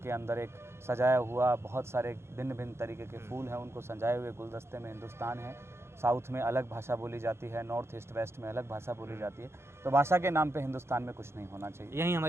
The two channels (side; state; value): left; late; 0.12 ms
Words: अंदर एक सजाया हुआ बहुत सारे भिन्न भिन्न तरीके के फूल हैं, उनको सजाए हुए गुलदस्ते में हिंदुस्तान है। साउथ में अलग भाषा बोली जाती है, नॉर्थ ईस्ट वेस्ट में अलग भाषा बोली जाती है। तो भाषा के नाम पे हिंदुस्तान में कुछ नहीं होना चाहिए। यही